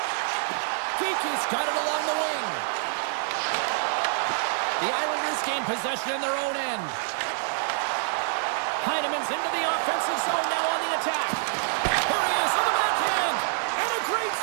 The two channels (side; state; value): left; silent; 60 dB below the other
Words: Kiki's got it along the wing. The Islanders gain possession in their own end. Heinemann's into the offensive zone now on the attack. Here he is on the backhand. And a great